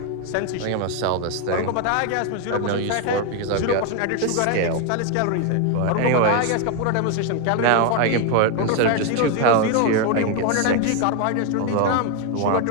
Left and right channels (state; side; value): different; both; correlation 0.01